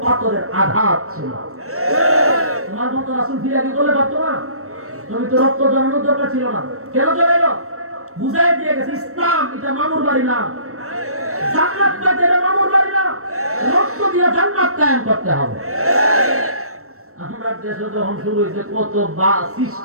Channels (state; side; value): late; left; 0.63 ms